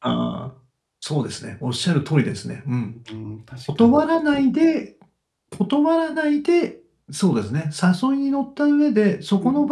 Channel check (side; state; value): both; identical; correlation 1.00